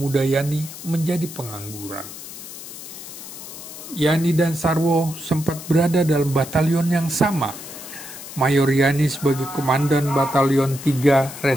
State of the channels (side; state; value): left; noise; hiss, 13 dB below the sound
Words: Yani menjadi pengangguran. Yani dan Sarwo sempat berada dalam batalion yang sama. Mayor Yani sebagai Komandan Batalion 3